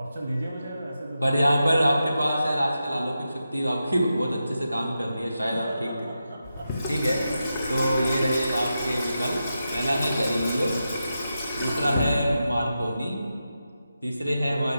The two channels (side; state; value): both; inverted; correlation -0.89